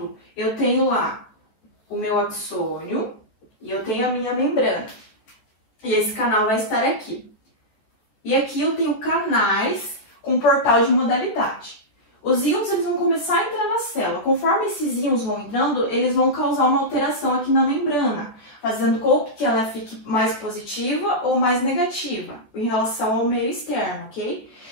eu tenho lá o meu axônio e eu tenho a minha membrana. E esse canal vai estar aqui. E aqui eu tenho canais com portal de modalidade. os íons eles vão começar a entrar na célula. Conforme esses íons vão entrando, eles vão causar uma alteração aqui na membrana, fazendo com que ela fique mais positiva ou mais negativa em relação ao meio externo, ok?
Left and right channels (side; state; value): right; late; 14 ms